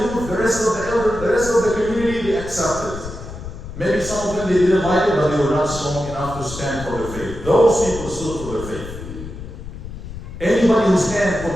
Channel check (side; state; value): left; noise; rumble, 11 dB below the sound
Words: the rest of the elders, the rest of the community, they accepted. Maybe some of them, they didn't like it, but they were not strong enough to stand for their faith. Those people stood for their faith. Anybody who stands